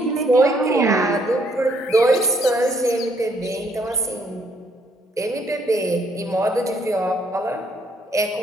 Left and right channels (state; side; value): normal; both; correlation 0.68